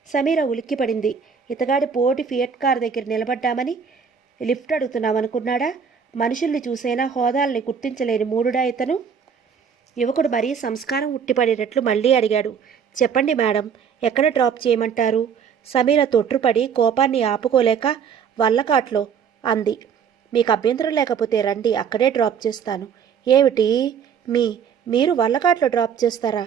సమీర ఉలిక్కిపడింది. ఇతగాడి పోటీ ఫియట్ కార్ దగ్గర నిలబడ్డామని లిఫ్ట్ అడుగుతున్నామనుకున్నాడా? మనుషుల్ని చూసైనా హోదాల్ని గుర్తించలేని మూడుడా ఇతను? యువకుడు మరీ సంస్కారం ఉట్టిపడేటట్లు మళ్ళీ అడిగాడు. చెప్పండి మేడం, ఎక్కడ డ్రాప్ చేయమంటారు? సమీర తొట్రుపడి కోపాన్ని ఆపుకోలేక వల్లకాట్లో అంది. మీకు అభ్యంతరం లేకపోతే రండి, అక్కడే డ్రాప్ చేస్తాను. ఏమిటి మీరు వల్లకాట్లో డ్రాప్ చేస్తారా?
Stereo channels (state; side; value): quieter; left; 7.0 dB